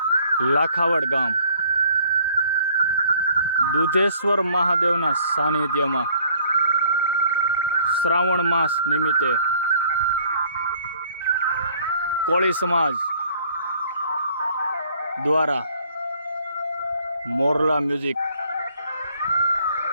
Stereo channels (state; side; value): inverted; both; correlation -0.59